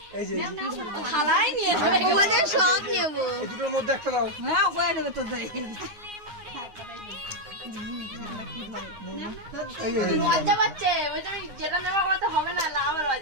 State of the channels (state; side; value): late; left; 9.6 ms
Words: এই যে সব নেবো। দুটোর মধ্যে একটা দাও। লজ্জা পাচ্ছে, যেটা নেওয়া হলে হবে না, লাভ